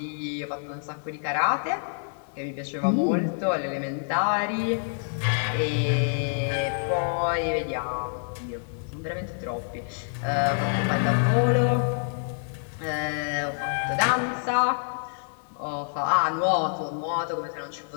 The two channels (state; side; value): silent; right; 60 dB below the other